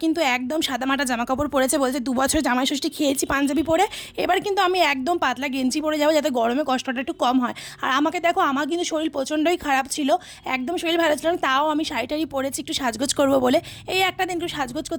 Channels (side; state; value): both; identical; correlation 1.00